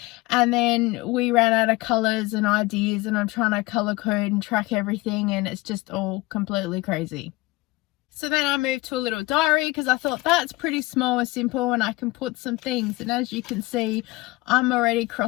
And then we ran out of colors and ideas, and I'm trying to color code and track everything, and it's just all completely crazy. So then I moved to a little diary because I thought that's pretty small and simple and I can put some things. And as you can see, I'm already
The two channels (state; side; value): quieter; right; 21.3 dB